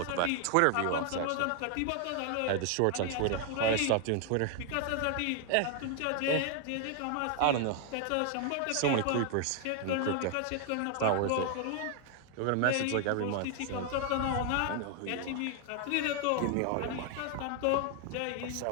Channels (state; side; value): different; both; correlation 0.00